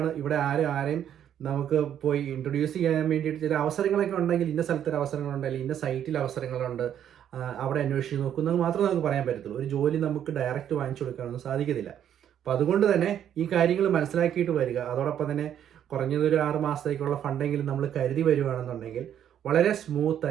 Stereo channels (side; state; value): left; quieter; 9.9 dB